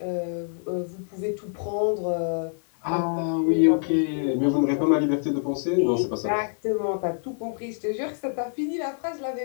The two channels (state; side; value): silent; right; 61 dB below the other